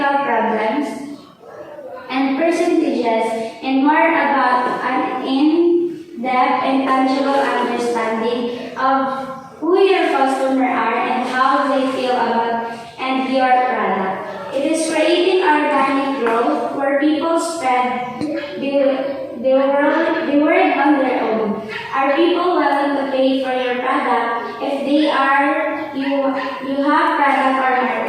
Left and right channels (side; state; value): both; identical; correlation 1.00